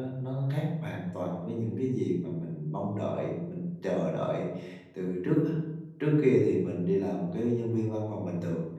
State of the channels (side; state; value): both; identical; correlation 1.00